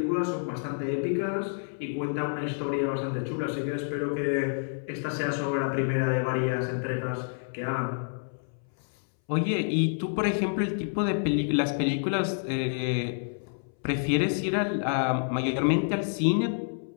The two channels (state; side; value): silent; right; 59 dB below the other